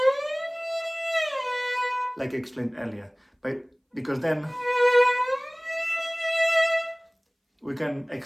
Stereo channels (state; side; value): identical; both; correlation 1.00